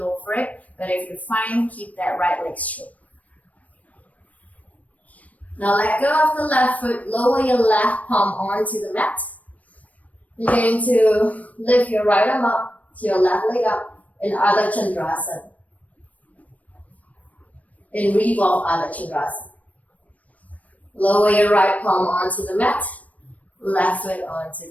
for it. But if you're fine, keep that right leg straight. Now let go of the left foot, lower your left palm onto the mat. You're going to lift your right arm up to your left leg up in Ardha Chandra Chapasana. In revolve Ardha Chandra Chapasana. Lower your right palm onto the mat, left foot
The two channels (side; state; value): right; late; 0.070 ms